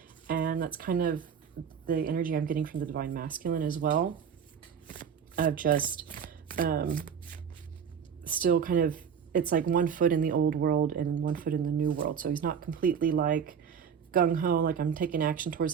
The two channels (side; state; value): left; quieter; 7.3 dB